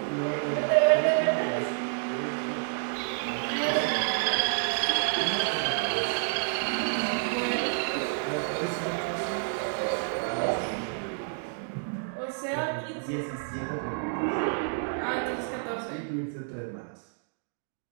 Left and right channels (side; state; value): left; silent; digital silence